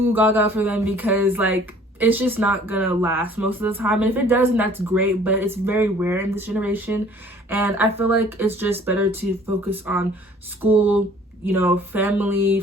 gaga for them because like it's just not gonna last most of the time. And if it does, then that's great, but it's very rare in this generation. And I feel like it's just better to focus on school, you know, family,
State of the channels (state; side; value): normal; both; correlation 0.54